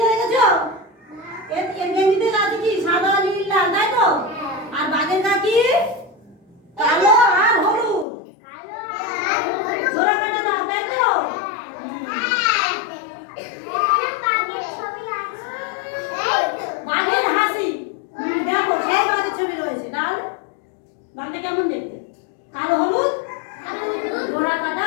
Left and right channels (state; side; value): drops out; right; at 8.1 s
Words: দেখেছো? এর গেঞ্জিতে আছে কি সাদা নীল লাল, তাই তো? আর বাঘের গা কি কালো আর হলুদ। ঘোড়া কাটা দাও, তাই তো? বাঘের হাসি দেখো, সেই বাঘের ছবি রয়েছে। ডাল ডালটা কেমন দেখতে? কালো হলুদ, ঘোড়া কাটা